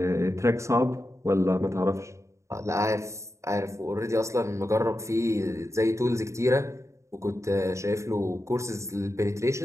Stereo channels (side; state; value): left; late; 0.14 ms